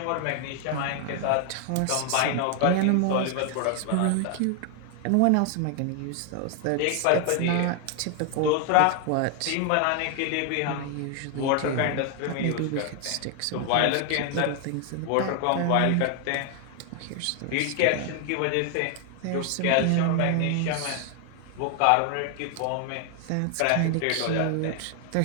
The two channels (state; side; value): different; both; correlation 0.00